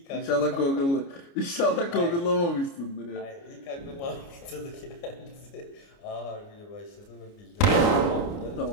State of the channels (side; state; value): right; late; 29 ms